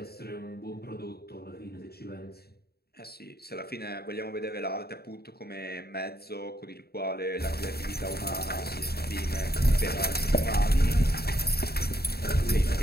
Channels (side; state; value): right; late; 0.46 ms